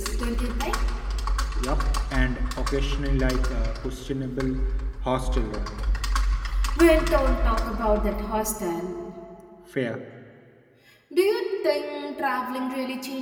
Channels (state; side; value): identical; both; correlation 1.00